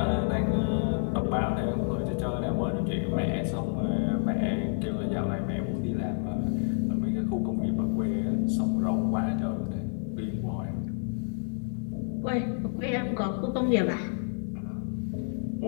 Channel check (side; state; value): right; silent; 58 dB below the other